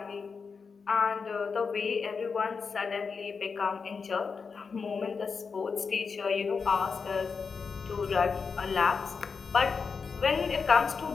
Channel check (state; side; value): quieter; right; 5.3 dB